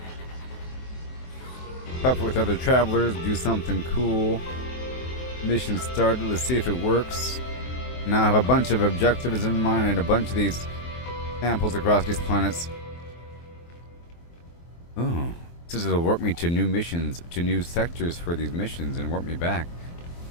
Pop with other travelers, do something cool. Mission started, let's see if it works. Now I have a bunch of objectives in mind and a bunch of these samples across these planets. Oh, this will warp me to new missions, to new sectors for these missions and warp me back.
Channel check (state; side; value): late; right; 23 ms